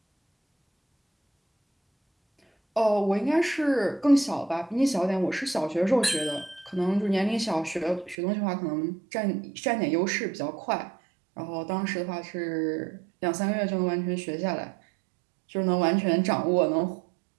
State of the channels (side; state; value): left; drops out; at 8.2 s